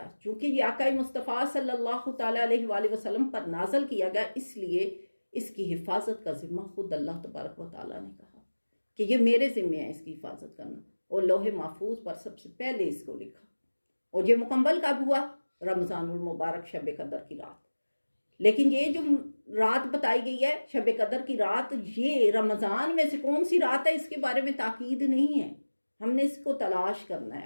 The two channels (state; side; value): inverted; both; correlation -1.00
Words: چونکہ یہ آقا مصطفیٰ صلی اللہ تعالیٰ علیہ وآلہ وسلم پر نازل کیا گیا، اس لیے اس کی حفاظت کا ذمہ خود اللہ تبارک و تعالیٰ نے کہا کہ یہ میرے ذمہ ہے اس کی حفاظت کرنا. اور لوح محفوظ پر سب سے پہلے اس کو لکھا. اور یہ مکمل کب ہوا؟ رمضان المبارک شب قدر کی رات. لیکن یہ جو رات بتائی گئی ہے شب قدر کی رات، یہ رمضان میں سے کون سی رات ہے اس کے بارے میں تاکید نہیں ہے، ہم نے اس کو تلاش کرنا